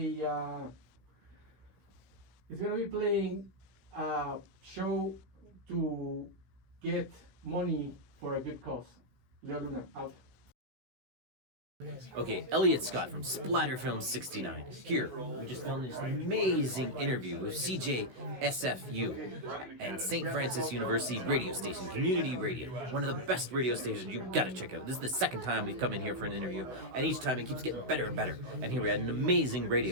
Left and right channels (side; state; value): left; late; 16 ms